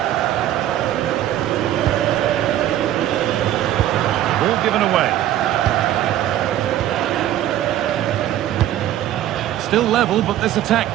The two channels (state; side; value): quieter; left; 12.6 dB